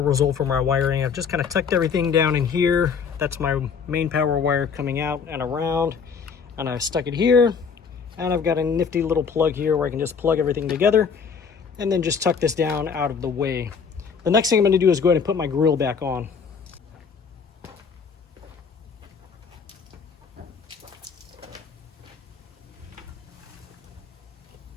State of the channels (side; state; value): right; quieter; 6.1 dB